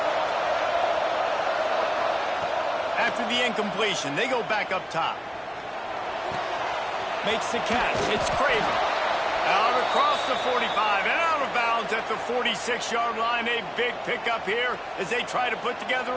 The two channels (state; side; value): identical; both; correlation 1.00